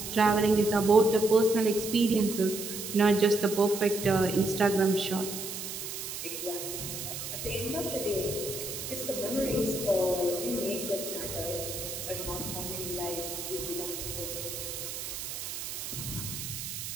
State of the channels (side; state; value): right; noise; hiss, 7 dB below the sound